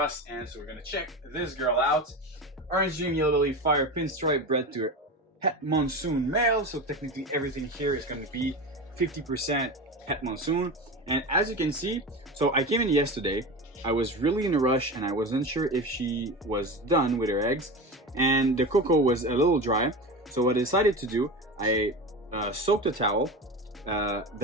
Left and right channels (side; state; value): both; normal; correlation 0.26